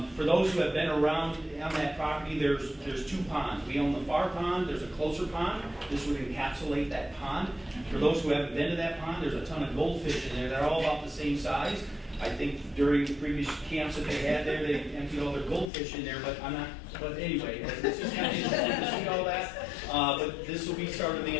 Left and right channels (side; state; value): right; drops out; at 15.7 s